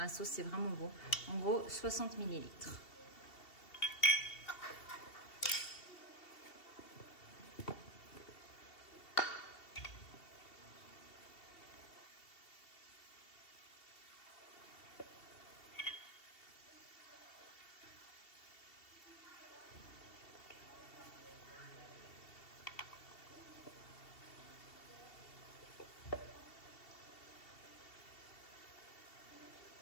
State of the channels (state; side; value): late; right; 2.7 ms